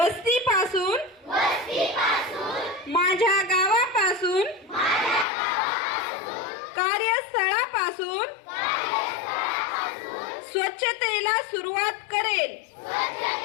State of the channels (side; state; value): right; drops out; at 5.2 s